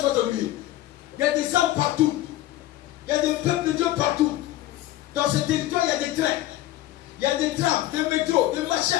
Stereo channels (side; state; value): right; quieter; 15.1 dB